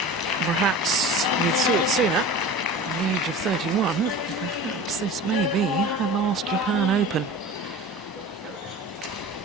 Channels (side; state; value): both; normal; correlation 0.36